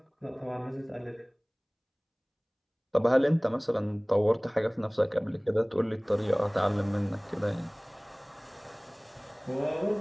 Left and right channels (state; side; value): identical; both; correlation 1.00